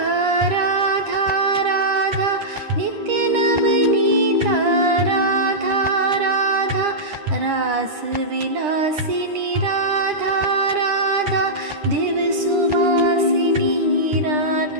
राधा राधा नित्य नवनीता राधा राधा रास विलासिनी राधा राधा दिव सुवासिनी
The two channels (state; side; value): late; left; 9.9 ms